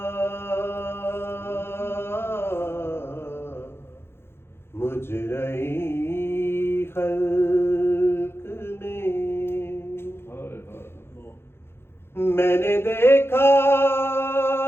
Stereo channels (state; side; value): late; right; 0.12 ms